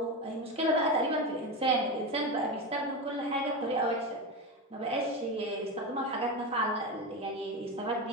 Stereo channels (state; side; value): normal; both; correlation 0.18